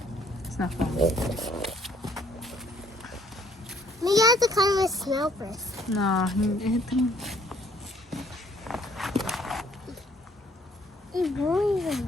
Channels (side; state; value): both; normal; correlation 0.62